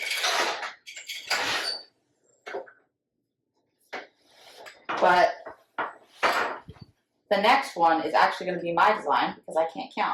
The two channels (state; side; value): identical; both; correlation 1.00